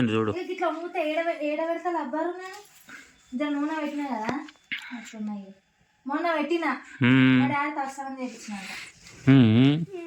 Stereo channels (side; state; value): both; identical; correlation 1.00